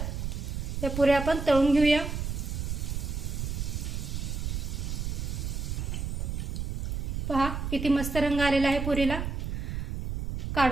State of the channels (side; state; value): right; noise; rumble, 3 dB below the sound